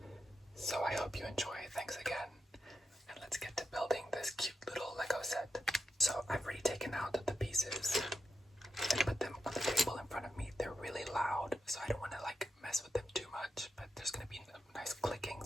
So I hope you enjoy. Thanks again, and let's get to building this cute little Lego set. So I've already taken out the pieces and put them on the table in front of me. They're really loud, so I don't want to mess with them too much, but there's going to be nice clicking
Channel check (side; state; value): both; normal; correlation 0.88